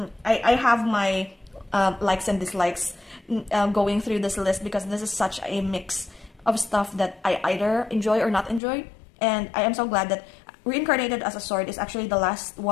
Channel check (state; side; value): drops out; right; at 8.6 s